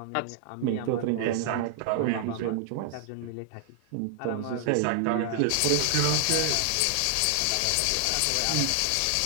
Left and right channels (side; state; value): both; different; correlation 0.00